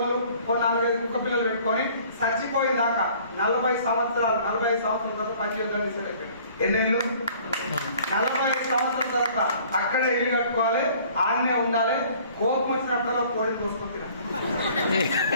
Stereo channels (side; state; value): both; inverted; correlation -0.53